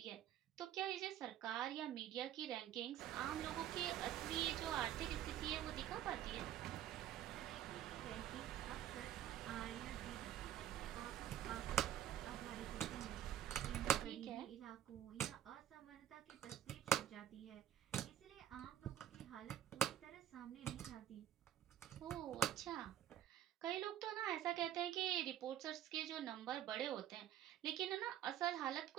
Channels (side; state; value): left; quieter; 11.4 dB